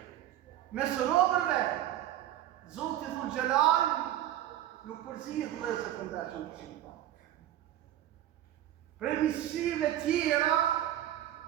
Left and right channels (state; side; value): quieter; left; 12.7 dB